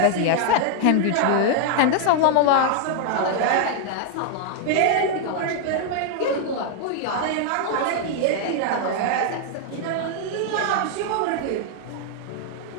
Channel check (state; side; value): different; both; correlation 0.00